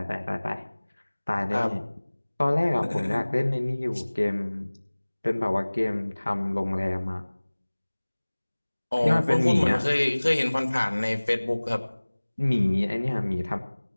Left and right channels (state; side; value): inverted; both; correlation -1.00